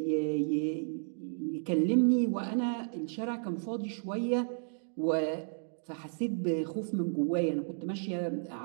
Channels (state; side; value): silent; left; digital silence